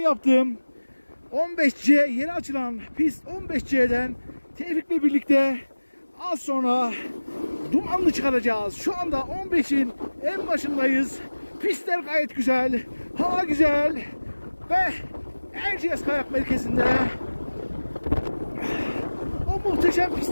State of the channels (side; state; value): both; inverted; correlation -1.00